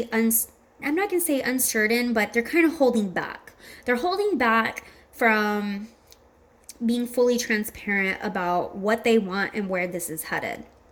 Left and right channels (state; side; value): identical; both; correlation 1.00